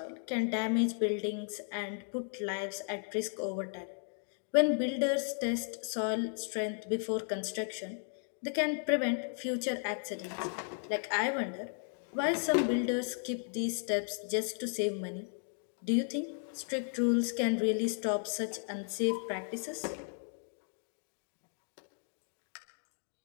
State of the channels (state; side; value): silent; right; 54 dB below the other